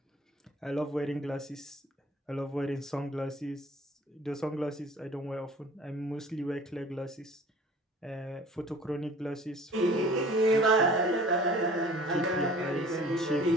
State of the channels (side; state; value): both; normal; correlation 0.48